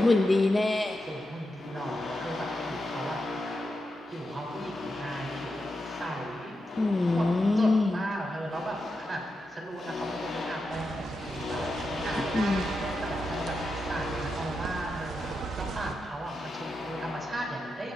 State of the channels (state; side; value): normal; both; correlation 0.87